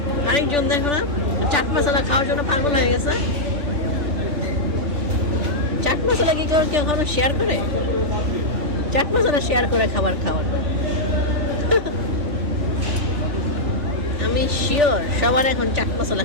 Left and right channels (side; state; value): left; late; 3.4 ms